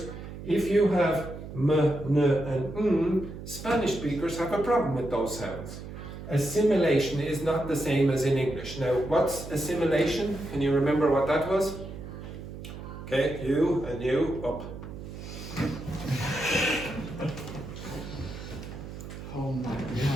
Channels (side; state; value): right; noise; hum, 11 dB below the sound